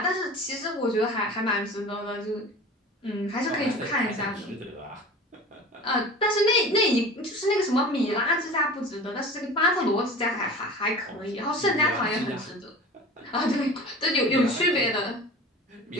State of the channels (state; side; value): normal; both; correlation 0.37